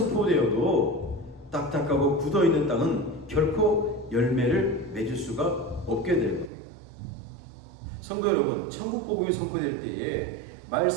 딱딱하고 굳어있는 땅은 결코 열매를 맺을 수가 없게 될 겁니다. 성도 여러분, 천국 복음이 선포될 때에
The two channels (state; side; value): drops out; left; at 6.5 s